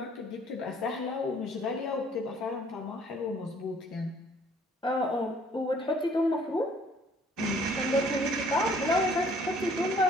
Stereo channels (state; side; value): normal; both; correlation 0.58